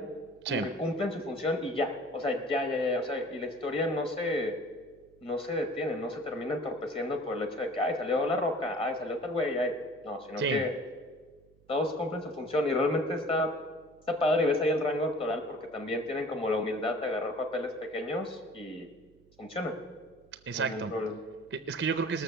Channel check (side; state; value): right; noise; hum, 29 dB below the sound